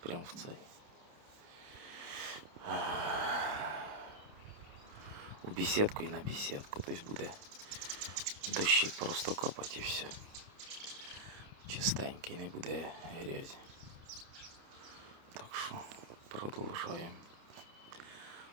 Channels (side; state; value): left; late; 29 ms